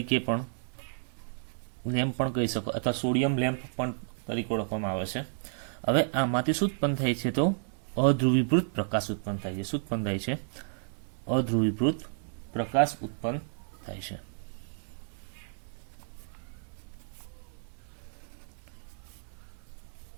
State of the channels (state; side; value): silent; left; digital silence